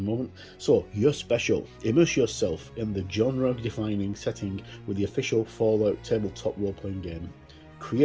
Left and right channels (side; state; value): both; identical; correlation 1.00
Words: So, you're special. Immerse yourself in the genre-defining setting with the official Fallout tabletop role-playing game.